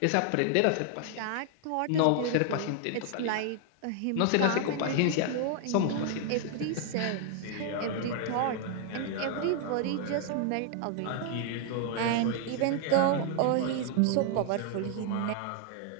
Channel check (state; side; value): different; both; correlation 0.00